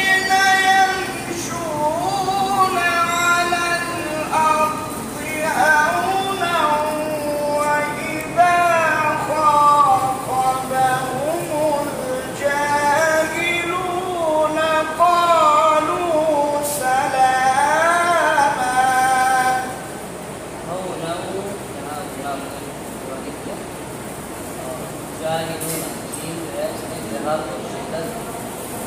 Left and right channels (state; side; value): identical; both; correlation 1.00